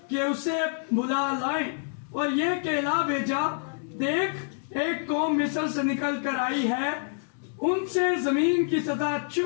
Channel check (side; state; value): right; silent; digital silence